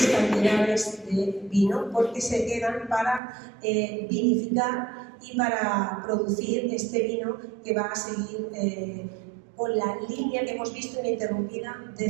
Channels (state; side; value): drops out; left; at 3.2 s